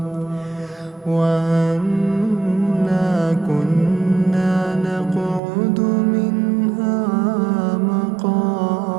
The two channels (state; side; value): drops out; left; at 5.4 s